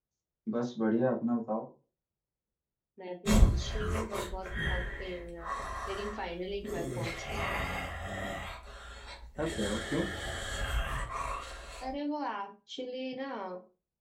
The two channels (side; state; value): both; identical; correlation 1.00